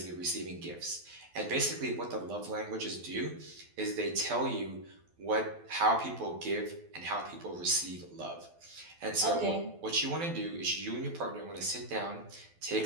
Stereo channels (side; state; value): left; late; 12 ms